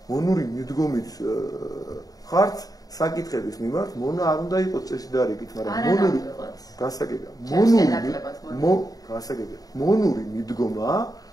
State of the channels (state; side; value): late; right; 0.18 ms